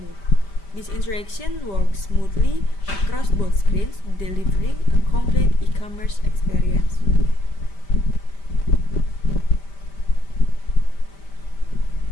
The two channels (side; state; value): right; late; 5.1 ms